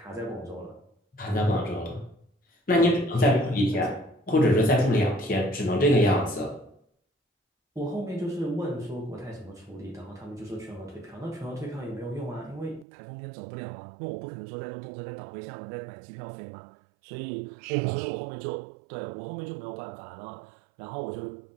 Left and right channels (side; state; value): left; drops out; at 12.9 s